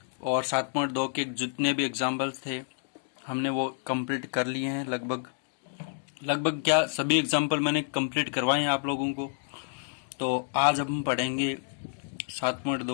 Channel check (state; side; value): silent; right; digital silence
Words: और 7.2 के जितने भी एग्जाम्पल्स थे हमने वो कंप्लीट कर लिए हैं। लगभग क्या सभी एग्जाम्पल मैंने कंप्लीट करवाए हैं आप लोगों को। तो आज हम पढ़ेंगे